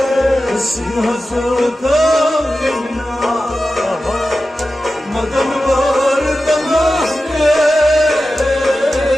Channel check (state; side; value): normal; both; correlation 0.93